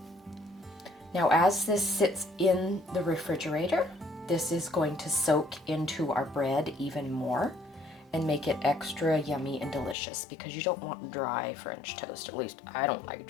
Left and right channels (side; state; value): right; drops out; at 10.0 s